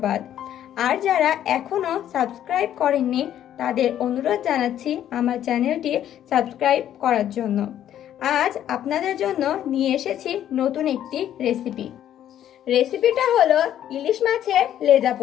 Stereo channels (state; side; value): quieter; right; 11.0 dB